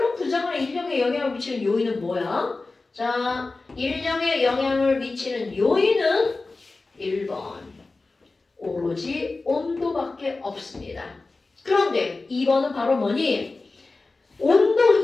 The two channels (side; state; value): right; quieter; 3.6 dB